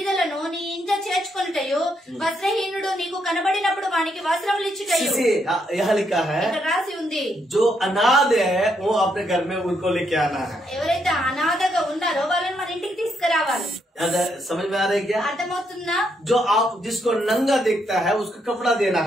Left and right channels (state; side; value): normal; both; correlation 0.76